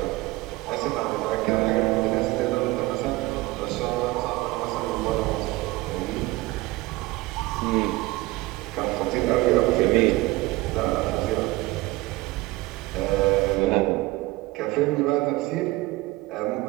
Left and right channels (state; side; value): quieter; left; 20.2 dB